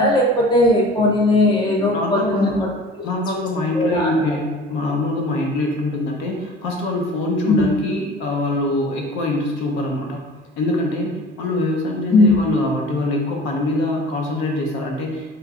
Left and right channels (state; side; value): normal; both; correlation 0.43